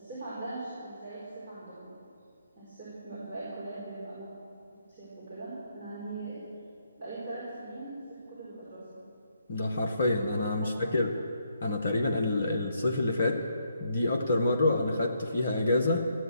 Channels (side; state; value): both; inverted; correlation -0.74